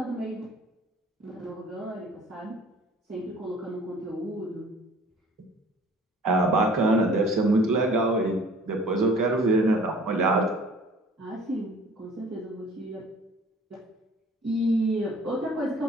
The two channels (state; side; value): normal; both; correlation 0.50